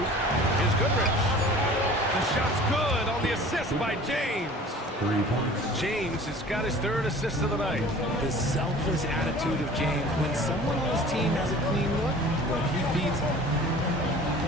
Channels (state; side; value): normal; both; correlation 0.45